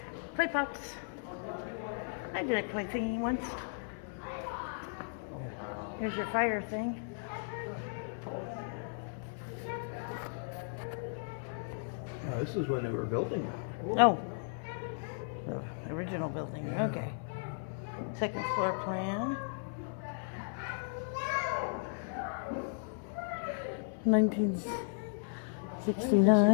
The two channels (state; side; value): silent; right; 54 dB below the other